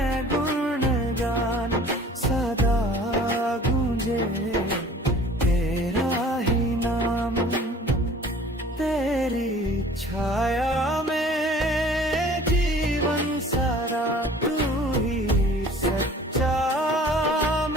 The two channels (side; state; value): both; normal; correlation 0.49